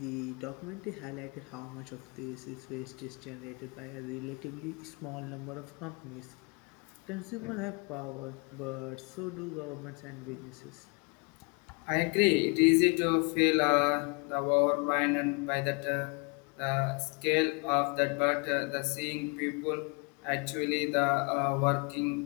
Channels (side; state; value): right; quieter; 32.5 dB